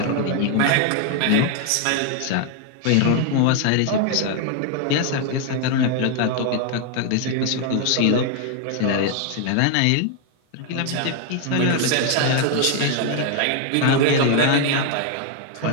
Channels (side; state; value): both; different; correlation 0.00